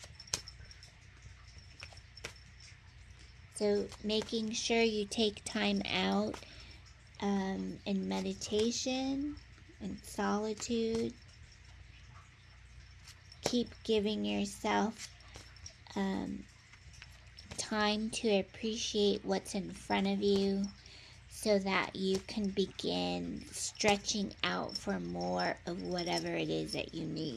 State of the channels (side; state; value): both; identical; correlation 1.00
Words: So making sure you take time out in meditation and solitude. Keep giving yourself time to appreciate what's in front of you, so that you can begin stretching out for more of whatever it is that you